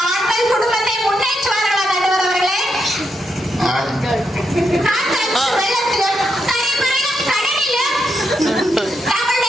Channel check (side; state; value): both; normal; correlation 0.82